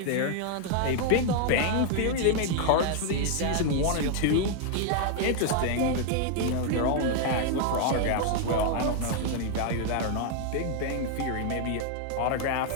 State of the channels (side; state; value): both; different; correlation 0.00